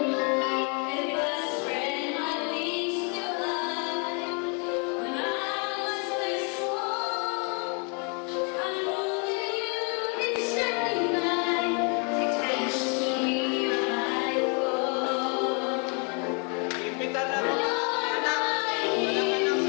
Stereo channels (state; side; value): quieter; right; 36.5 dB